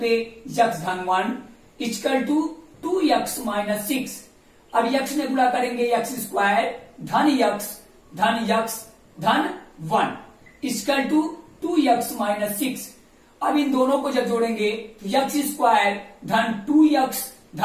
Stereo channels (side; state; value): both; identical; correlation 1.00